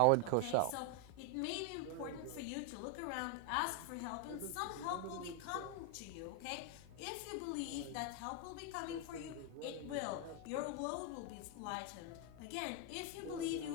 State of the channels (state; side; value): different; both; correlation 0.01